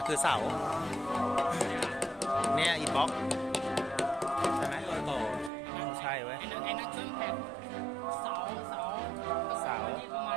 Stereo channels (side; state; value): left; drops out; at 5.5 s